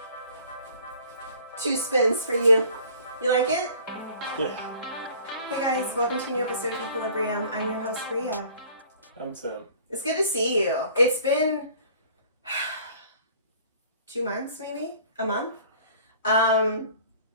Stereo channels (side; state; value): both; inverted; correlation -0.51